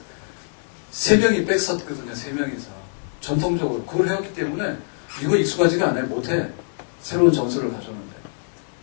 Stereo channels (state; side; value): silent; right; digital silence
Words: 3명이 백서거든요, 3명이서. 전통적으로. 그걸 해왔기 때문에 이거 익숙하지가 않아요, 못해. 새로운 전술을 가져오는데.